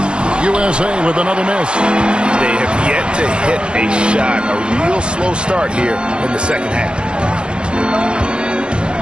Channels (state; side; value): late; left; 0.054 ms